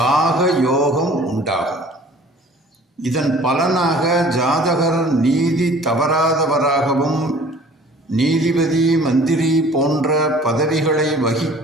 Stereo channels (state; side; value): normal; both; correlation 0.49